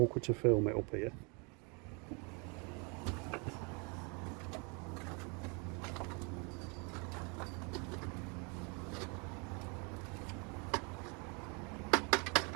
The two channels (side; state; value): left; quieter; 32.9 dB